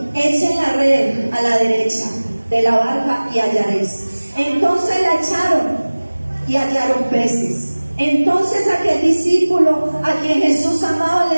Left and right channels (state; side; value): inverted; both; correlation -1.00